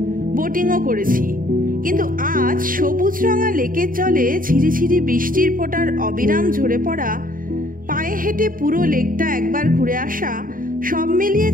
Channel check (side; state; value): left; late; 0.40 ms